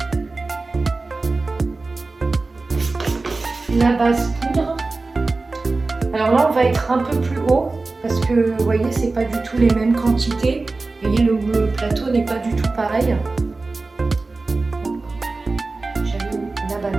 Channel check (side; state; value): left; quieter; 3.5 dB